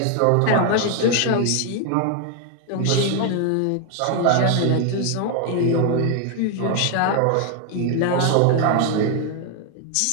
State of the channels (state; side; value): different; both; correlation 0.00